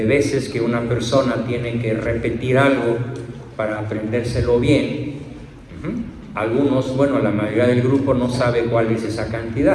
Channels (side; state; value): both; identical; correlation 1.00